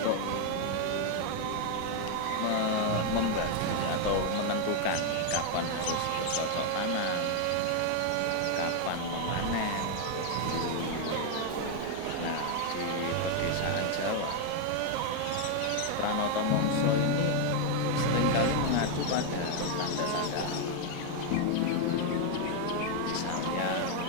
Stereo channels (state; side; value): different; both; correlation 0.01